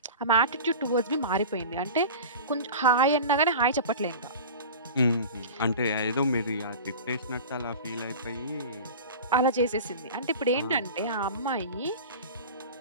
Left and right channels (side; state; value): both; inverted; correlation -0.34